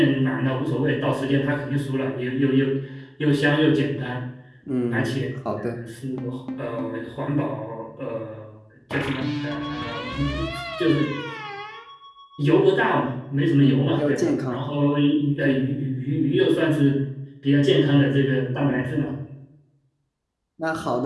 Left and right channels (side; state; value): both; identical; correlation 1.00